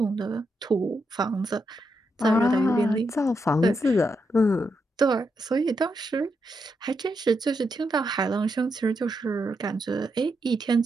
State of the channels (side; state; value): both; normal; correlation 0.83